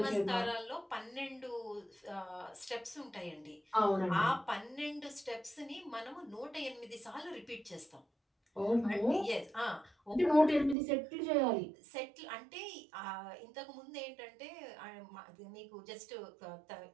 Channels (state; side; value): drops out; left; at 10.8 s